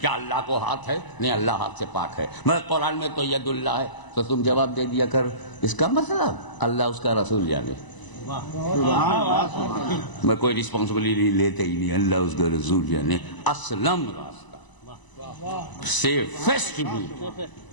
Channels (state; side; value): late; right; 1.0 ms